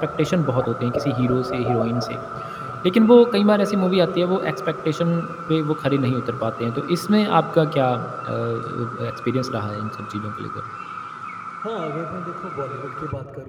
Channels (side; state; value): both; identical; correlation 1.00